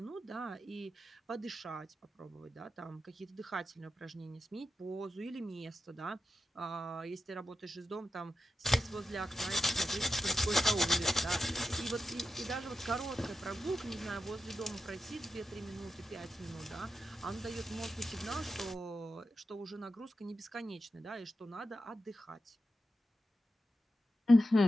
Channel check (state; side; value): normal; both; correlation 0.90